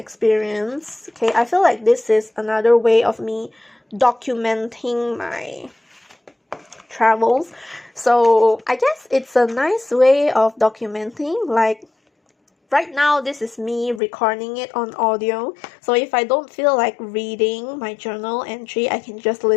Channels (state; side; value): drops out; right; at 14.0 s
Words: Okay, I feel like this is another way of me documenting my travels. So I guess it's a nice way of documenting. Like right now, this is me recording it on audio. So if I don't feel like reading my journal entry, I can just